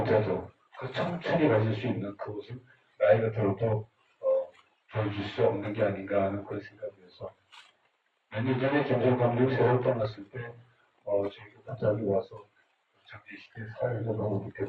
그 청춘이 가질 수 있는 그것을 나이가 들어도 보여줄 수 없는 게 아닌가 하는 그런 생각이 들어서 몇 년 전에 김정 감독이 새로 떠났을 때 저희가 갑자기 와서 장례식에 사회에서 너무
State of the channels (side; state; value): both; identical; correlation 1.00